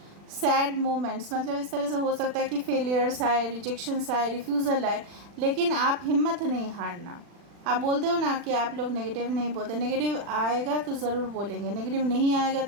सैड मोमेंट्स, मतलब इस तरह से हो सकता है कि फेलियर्स आए, रिजेक्शंस आए, रिफ्यूज़ल आए, लेकिन आप हिम्मत नहीं हारना। आप बोलते हो ना कि आप लोग नेगेटिव नहीं बोलते, नेगेटिव आएगा तो ज़रूर बोलेंगे, नेगेटिव नहीं आएगा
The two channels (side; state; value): left; late; 40 ms